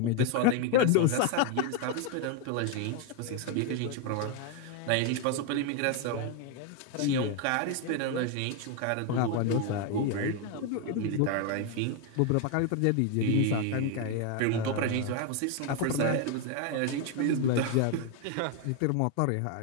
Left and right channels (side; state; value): both; different; correlation 0.01